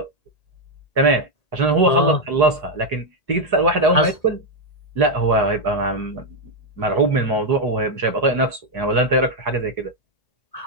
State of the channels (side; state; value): right; late; 1.8 ms